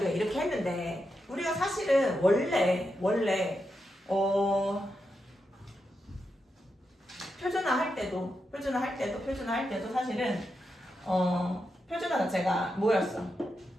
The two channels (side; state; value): both; normal; correlation 0.86